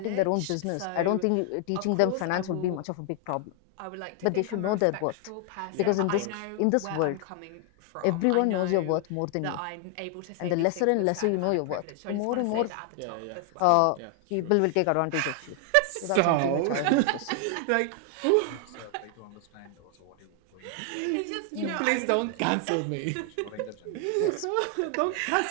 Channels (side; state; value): both; different; correlation 0.00